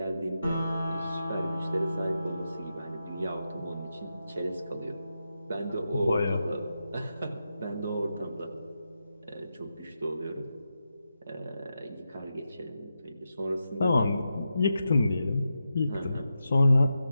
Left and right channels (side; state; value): both; inverted; correlation -0.88